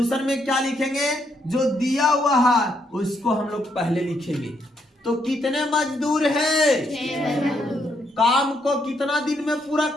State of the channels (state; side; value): normal; both; correlation 0.75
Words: में क्या लिखेंगे? जो दिया हुआ है उसको हम लोग पहले लिखेंगे। तो कितने मजदूर हैं? 6 मजदूर। काम को कितना दिन में पूरा